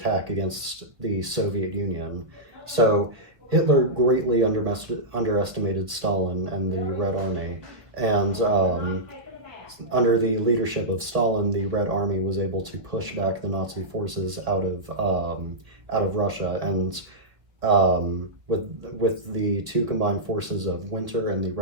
against the Soviet Union. So Hitler greatly underestimated Stalin and the Red Army, and under the leadership of Stalin, the Red Army was able to push back the Nazi forces out of Russia, and with the two combined forces of Winter and the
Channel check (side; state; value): left; late; 1.4 ms